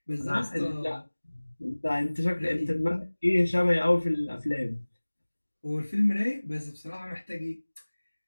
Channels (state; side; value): inverted; both; correlation -1.00